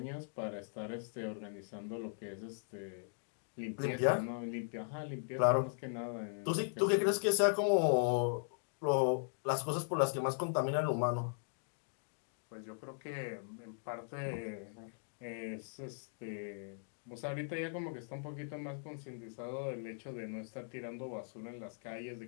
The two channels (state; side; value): silent; right; digital silence